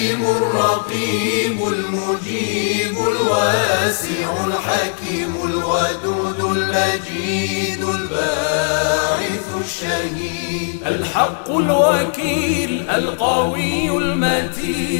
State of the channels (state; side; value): silent; right; digital silence